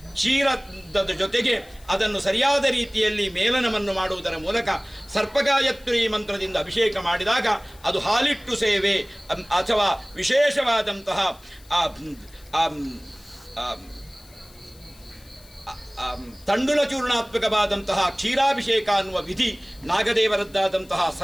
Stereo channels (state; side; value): noise; left; hiss, 25 dB below the sound